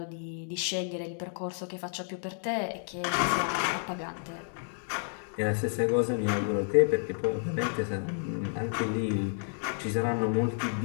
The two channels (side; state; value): right; silent; 56 dB below the other